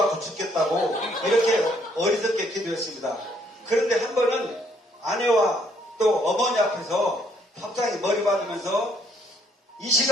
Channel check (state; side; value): normal; both; correlation 0.67